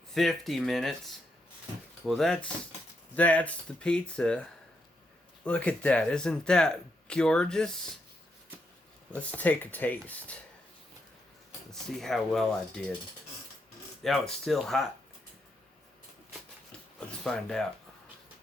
50 minutes. Well, that's the pizza. Look at that. Isn't that gorgeous? Let's take a taste. Let's see how well I did. Oh, it's still hot. Let's find out.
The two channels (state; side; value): normal; both; correlation 0.80